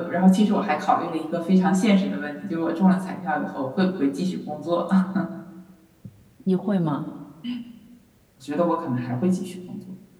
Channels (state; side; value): identical; both; correlation 1.00